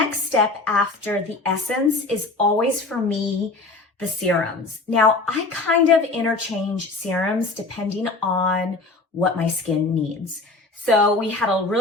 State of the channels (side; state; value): right; quieter; 3.4 dB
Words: step after the essence is always for me, the serums. Now, I kind of interchange serums depending on what my skin needs. So we had a